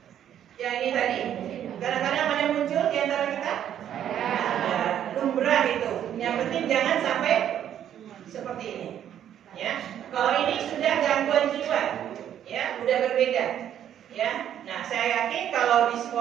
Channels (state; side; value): quieter; left; 10.2 dB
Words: Yang ini tadi, kadang-kadang ada muncul di antara kita. Ya, lumrah itu. Yang penting jangan sampai seperti ini. Ya. Kalau ini sudah gangguan jiwa, ya, udah berbeda. Ya. Nah, saya yakin kalau di